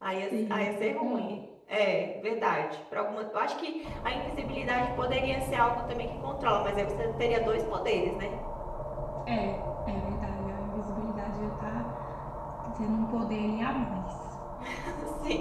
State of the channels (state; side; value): identical; both; correlation 1.00